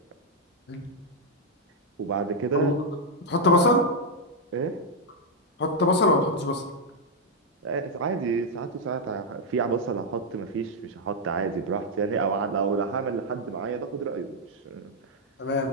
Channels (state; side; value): normal; both; correlation -0.01